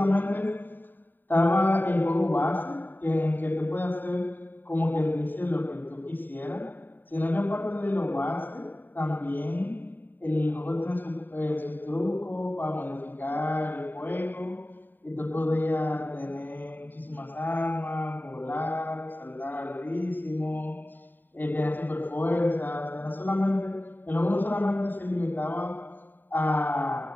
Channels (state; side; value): late; right; 0.091 ms